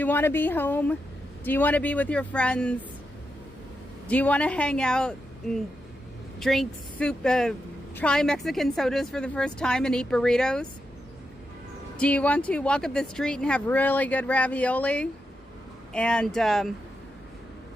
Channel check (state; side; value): normal; both; correlation 0.86